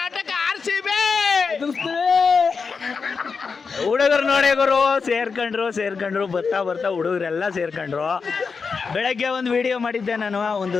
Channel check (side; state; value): right; quieter; 5.1 dB